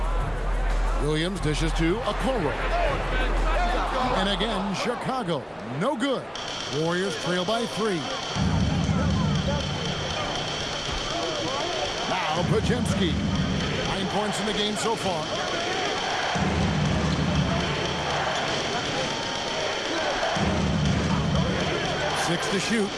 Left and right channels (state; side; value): identical; both; correlation 1.00